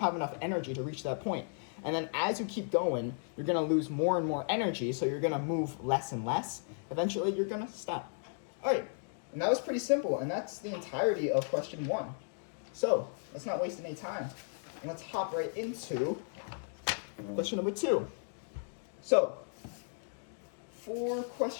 have enough energy to reach that point. And then as you keep going, you're going to lose more and more energy, so you're going to move less and less. Eventually, you're going to stop. All right, and that was pretty simple, and that's the entirety of question 1. So let's not waste any time, and let's hop right into question number 2. So, for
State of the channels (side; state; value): right; silent; digital silence